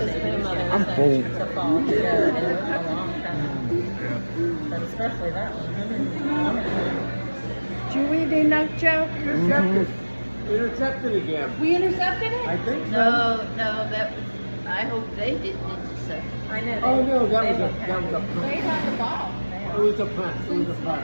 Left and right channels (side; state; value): both; inverted; correlation -1.00